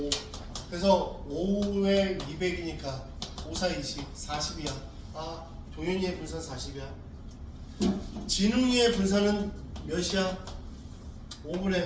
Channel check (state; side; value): identical; both; correlation 1.00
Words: 그래서 5에 200이니까 5, 4, 20, 40이야. 동현이의 분산 40이야. 진웅이의 분산은 몇이야?